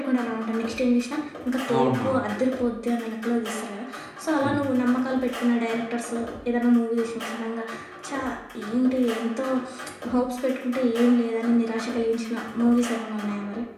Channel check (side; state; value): both; identical; correlation 1.00